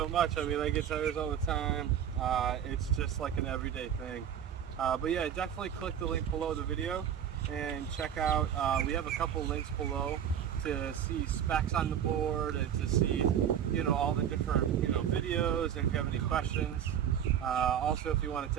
much. I mean, I get tires all the time. It's just like an everyday thing. But yeah, definitely click the link below the video and check out, we have a couple links below to see specs on the board and to see, you know, all the different, you know, videos, and if you have any questions. Also, if you want to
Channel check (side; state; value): left; quieter; 9.3 dB